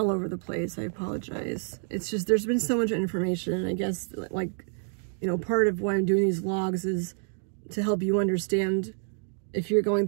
over the place. I apologize. It's just, there's been so much information, and I guess, like, you know, part of why I'm doing these vlogs is to help you understand if you're going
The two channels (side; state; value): left; silent; digital silence